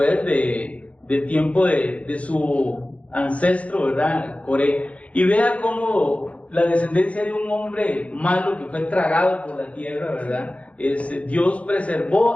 de tiempo de su ancestro, ¿verdad? Coré. Y vea cómo la descendencia de un hombre malo que fue tragado por la tierra, ¿verdad? Dios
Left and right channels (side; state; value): right; late; 0.064 ms